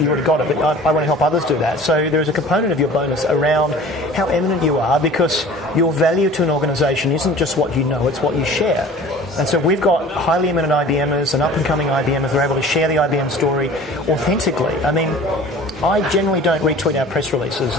got it, but I want to help others do that. So there's a component of your bonus around how eminent you are, because your value to an organisation isn't just what you know, it's what you share. And so we've got highly eminent IBMers and up-and-coming IBMers who are able to share the IBM story authentically. I mean, I generally don't retweet our press releases.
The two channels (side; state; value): both; normal; correlation 0.44